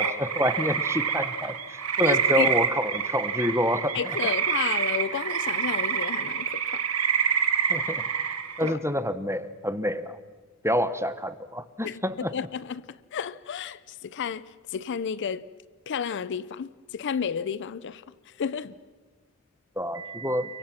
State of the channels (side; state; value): both; normal; correlation 0.06